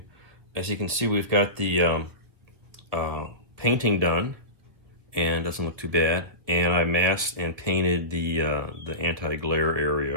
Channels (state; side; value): late; left; 1.7 ms